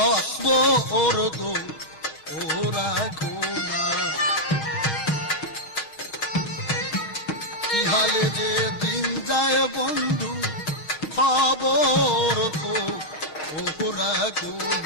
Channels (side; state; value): right; late; 6.3 ms